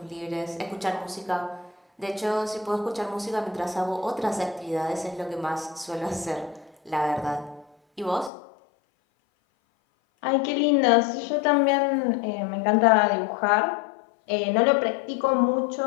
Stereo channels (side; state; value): right; drops out; at 8.3 s